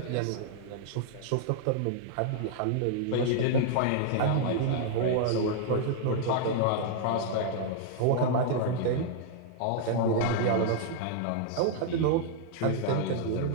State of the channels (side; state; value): both; different; correlation -0.01